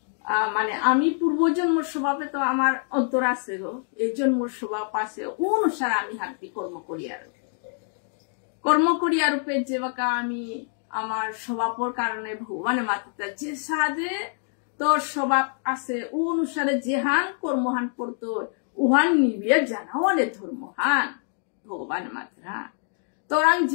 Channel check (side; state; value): right; silent; 57 dB below the other